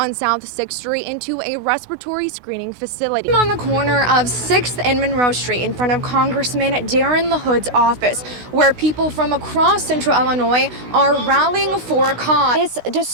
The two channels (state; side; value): late; left; 16 ms